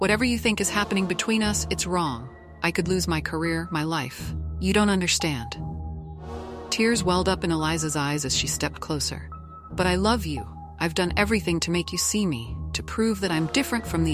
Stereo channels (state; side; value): identical; both; correlation 1.00